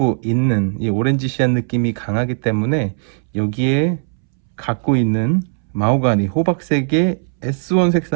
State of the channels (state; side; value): silent; left; 66 dB below the other